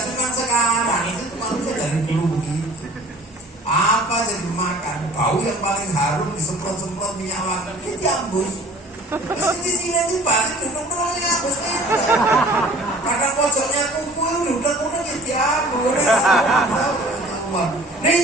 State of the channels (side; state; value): both; normal; correlation 0.48